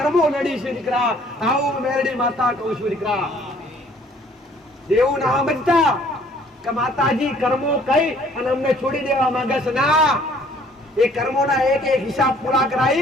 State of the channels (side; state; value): both; normal; correlation 0.58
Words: નડી છે દીકરા. આવું મેરડી માતા કહું છું દીકરા. દેવું ના બનતા કે માતાજી કર્મો કઈ અને અમને છોડી દેવા માંગે છે. ના, એ કર્મોના એક એક હિસાબ પૂરા